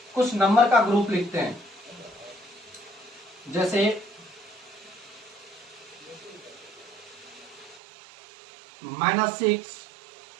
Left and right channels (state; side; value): drops out; left; at 7.8 s